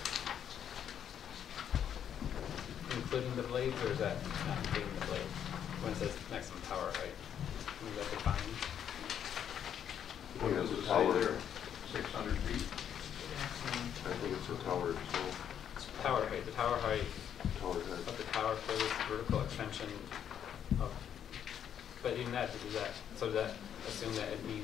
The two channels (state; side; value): quieter; right; 9.1 dB